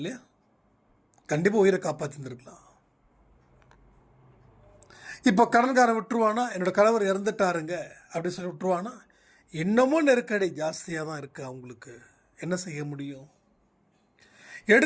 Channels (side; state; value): both; identical; correlation 1.00